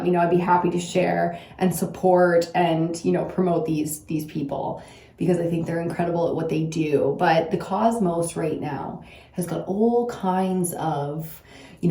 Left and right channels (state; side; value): identical; both; correlation 1.00